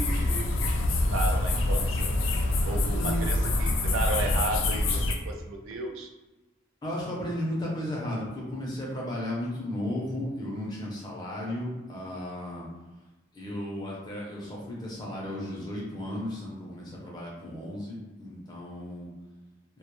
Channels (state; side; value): normal; both; correlation 0.69